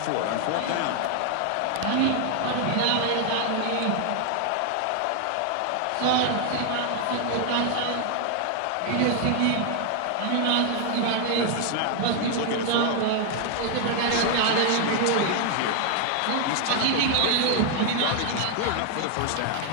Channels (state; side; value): different; both; correlation 0.00